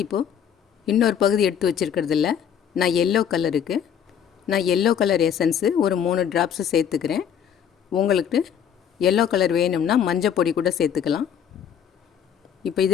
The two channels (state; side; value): quieter; right; 8.5 dB